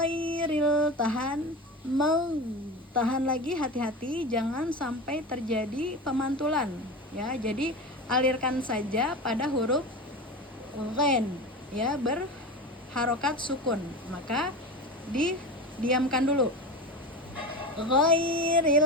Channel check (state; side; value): normal; both; correlation 0.26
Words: tahan, tahan lagi, hati-hati jangan sampai terjadi pemantulan ya, jadi alirkan saja pada huruf ghain ya, berharokat sukun, maka didiamkan dulu,